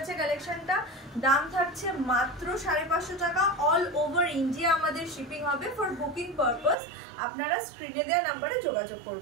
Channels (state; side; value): drops out; left; at 6.8 s